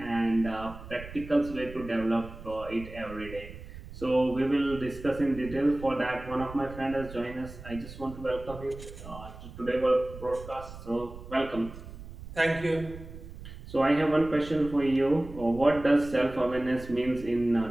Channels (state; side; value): noise; right; rumble, 14 dB below the sound